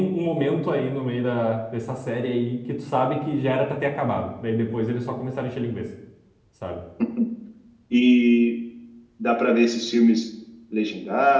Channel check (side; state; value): both; identical; correlation 1.00